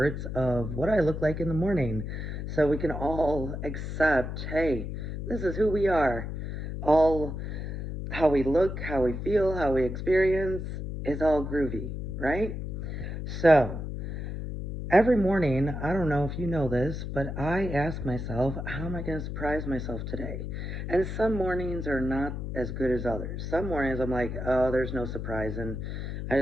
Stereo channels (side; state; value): left; noise; hum, 5 dB below the sound